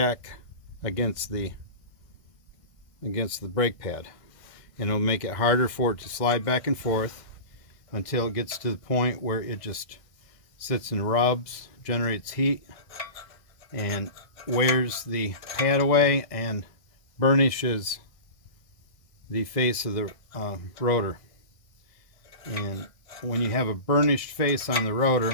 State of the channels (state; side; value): late; right; 1.6 ms